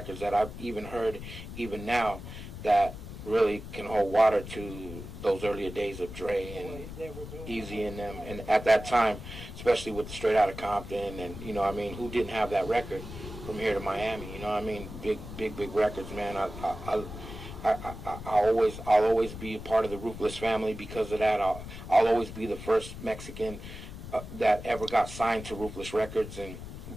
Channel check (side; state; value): left; noise; rumble, 11 dB below the sound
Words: that I've even heard, even now, that really can hold water to those earlier days of Dre and Eazy and them, and at that time, especially with the Straight Outta Compton, and you know, I mean, who didn't have that record from here to Miami? You know, what I mean, big records, man. I'll always be a part of the Ruthless family because of that. I'll always be the first Mexican that ever got signed to Ruthless Records and